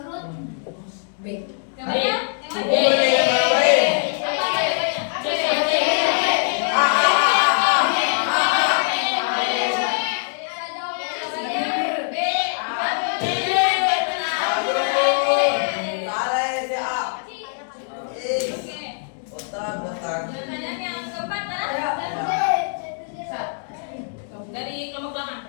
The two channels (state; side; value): silent; right; digital silence